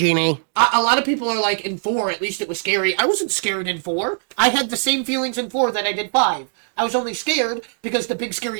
a lot of people are like, in 4, at least it was scary. I wasn't scared in 4. I had the same feelings in 4 that I did 5. I was only scared because the big scary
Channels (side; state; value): left; silent; digital silence